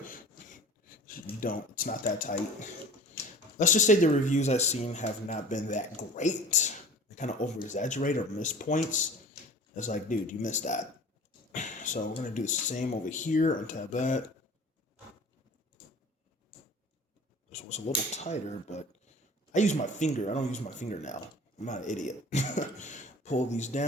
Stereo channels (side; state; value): both; normal; correlation 0.43